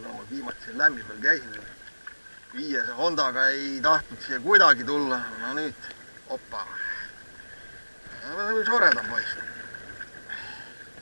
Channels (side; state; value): both; inverted; correlation -1.00